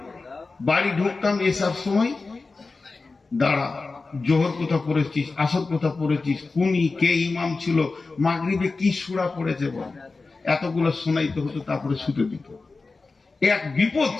বাড়ি ঢুকতাম এসব সময়, দাঁড়া, জোহর কোথা পড়েছিস, আসর কোথা পড়েছিস, কুনি কে ইমাম ছিল, মাগরিবে কি সূরা পড়েছে বল, এতগুলো শোনাইতে হতো, তারপরে শুতে দিত। এক বিপদ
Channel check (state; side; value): quieter; right; 3.9 dB